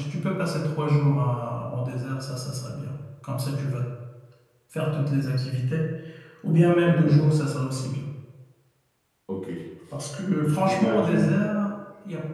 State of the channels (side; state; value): both; identical; correlation 1.00